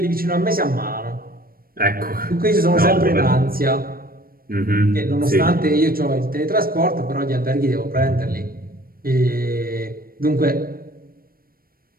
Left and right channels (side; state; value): left; late; 0.43 ms